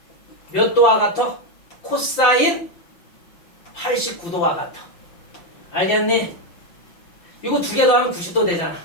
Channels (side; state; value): right; late; 5.8 ms